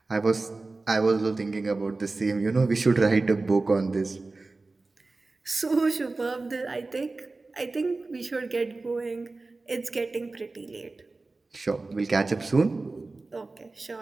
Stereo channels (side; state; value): left; quieter; 3.5 dB